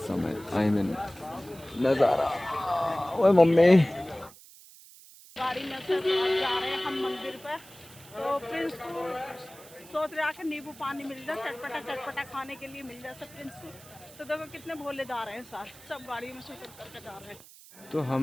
है, आई मीन नज़ारा। ओए मम्मी गाड़ी में से जा रहे हैं हम मंदिर पे। तो प्रिंस को सोच रहा कि नींबू पानी मिल जाए, चटपटा चटपटा खाने के लिए मिल जाए सब प्रिंस को। तो देखो कितने भोले जा रहे हैं साथ, सब गाड़ी में से करके जा रहे हैं। तो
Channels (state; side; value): noise; right; hiss, 21 dB below the sound